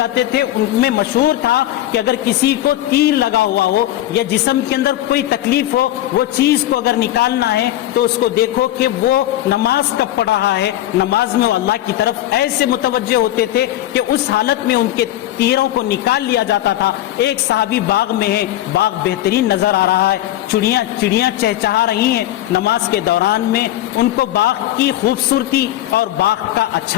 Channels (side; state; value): right; quieter; 13.8 dB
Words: تھے۔ ان میں مشہور تھا کہ اگر کسی کو تیر لگا ہوا ہو یا جسم کے اندر کوئی تکلیف ہو، وہ چیز کو اگر نکالنا ہے تو اس کو دیکھو کہ وہ نماز کب پڑھ رہا ہے۔ نماز میں وہ اللہ کی طرف ایسے متوجہ ہوتے تھے کہ اس حالت میں ان کے تیروں کو نکال لیا جاتا تھا۔ ایک صحابی باغ میں ہے، باغ بہترین نظر آ رہا ہے، چڑیاں چہچہا رہی ہیں، نماز کے دوران میں ان کو باغ کی خوبصورتی اور باغ کا